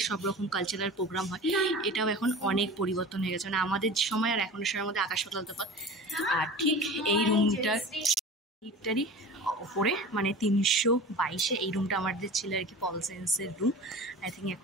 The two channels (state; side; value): normal; both; correlation 0.36